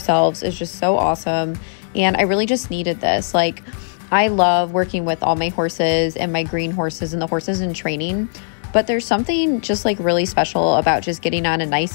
is just so awesome. And I really just needed this. Like, I love working with all my horses and my green horses and the horses in training. But there's something just like really special about just getting on a nice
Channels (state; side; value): silent; right; digital silence